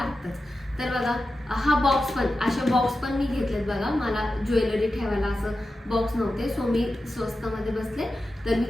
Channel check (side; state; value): both; normal; correlation 0.92